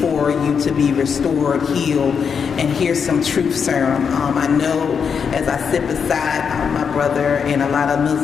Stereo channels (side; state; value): right; quieter; 6.5 dB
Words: you to be restored, healed, and hear some truth serum. I know as I sit beside my brother, and a lot of